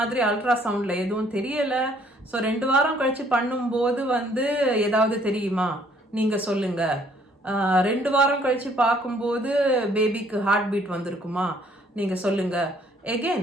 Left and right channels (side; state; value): both; normal; correlation 0.62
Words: அல்ட்ராசவுண்ட்ல எதுவும் தெரியல, ஸோ 2 வாரம் கழிச்சு பண்ணும்போது வந்து ஏதாவது தெரியுமா நீங்க சொல்லுங்க. 2 வாரம் கழிச்சு பார்க்கும்போது பேபிக்கு ஹார்ட் பீட் வந்திருக்குமா நீங்க சொல்லுங்க.